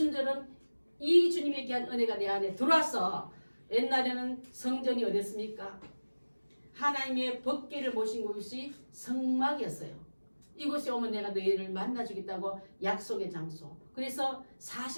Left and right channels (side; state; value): both; inverted; correlation -1.00